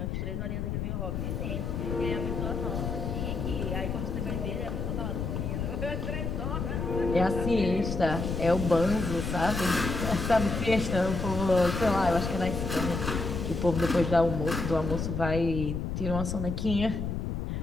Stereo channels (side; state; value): left; noise; rumble, 3 dB below the sound